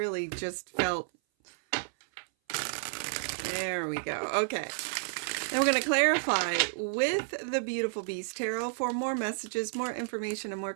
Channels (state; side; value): silent; left; 57 dB below the other